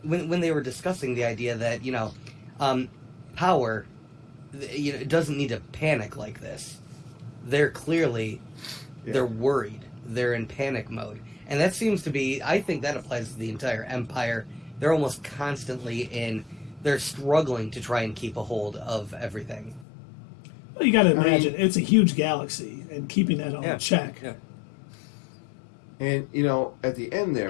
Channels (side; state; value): right; drops out; at 19.9 s